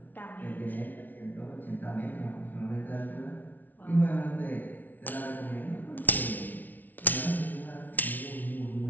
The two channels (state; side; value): late; right; 0.081 ms